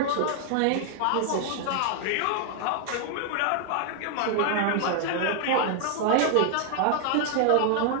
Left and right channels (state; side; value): different; both; correlation 0.00